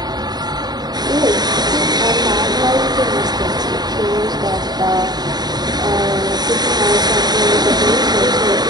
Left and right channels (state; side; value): late; left; 0.20 ms